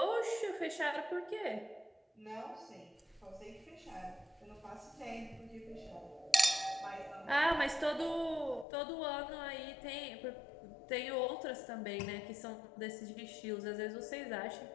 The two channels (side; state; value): right; drops out; at 8.7 s